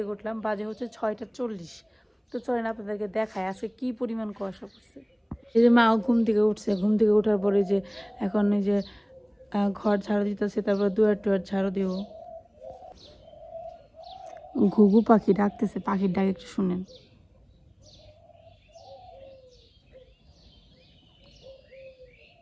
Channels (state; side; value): identical; both; correlation 1.00